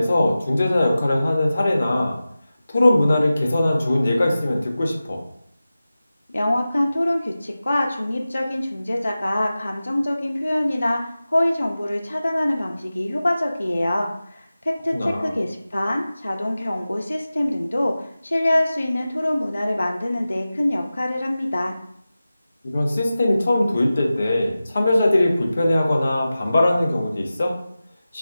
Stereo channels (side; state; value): both; inverted; correlation -0.95